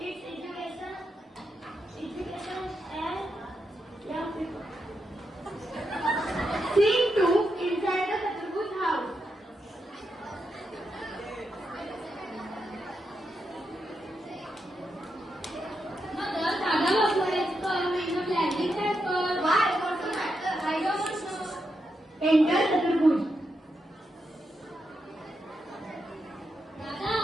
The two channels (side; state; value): both; normal; correlation 0.84